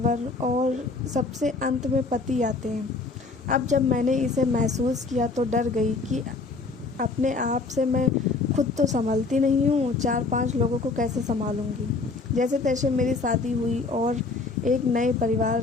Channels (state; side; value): quieter; right; 3.9 dB